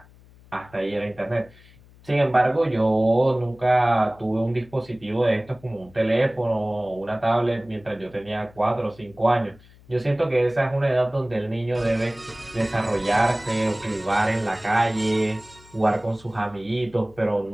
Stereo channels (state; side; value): noise; left; hum, 25 dB below the sound